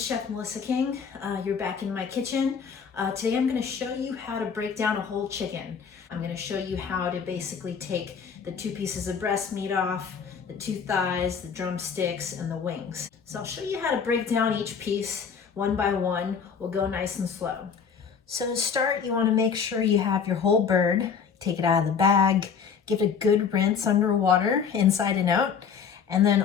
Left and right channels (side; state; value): right; quieter; 6.5 dB